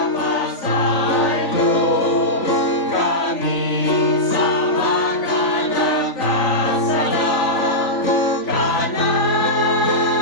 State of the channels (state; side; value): late; right; 3.5 ms